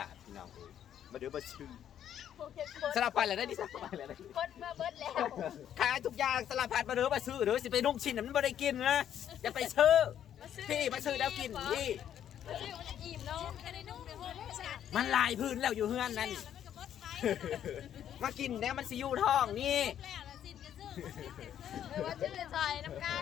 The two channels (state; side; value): quieter; right; 10.1 dB